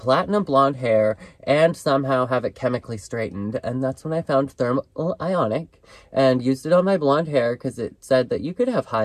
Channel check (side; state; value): both; identical; correlation 1.00